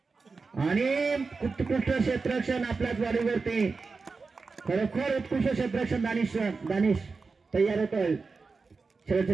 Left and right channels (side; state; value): left; quieter; 4.4 dB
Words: आणि उत्कृष्ट क्षेत्ररक्षण आपल्याच वाढीवरती. खरोखर उत्कृष्ट क्षेत्ररक्षण दानिश तयार होतोय. शेवटचे